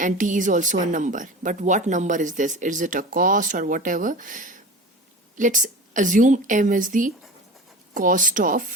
t is also a number. But what number is this? Is it a cost or whatever? Let's assume m is the cost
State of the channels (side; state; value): both; normal; correlation 0.33